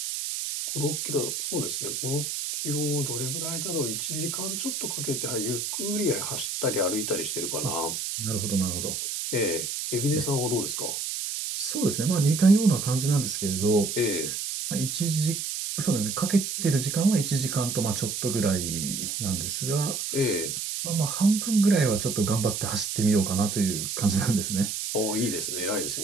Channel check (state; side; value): noise; right; hiss, 3 dB below the sound